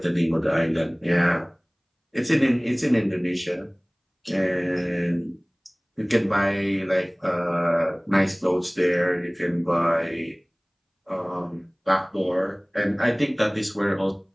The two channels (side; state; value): both; identical; correlation 1.00